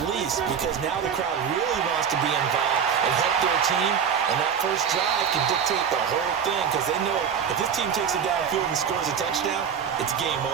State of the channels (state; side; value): quieter; left; 7.5 dB